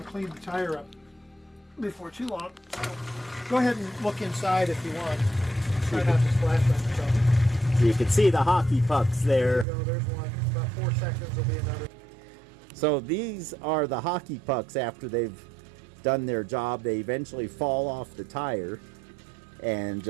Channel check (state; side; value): drops out; left; at 9.7 s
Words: to clean the tire up before too long. So go ahead and look inside if you want. Try not to splash on yourself. So you can see the hockey pucks there. There you go, there's one. About 4 seconds will be another. So these are the hockey pucks after they've done their job. They eventually fall off the tire and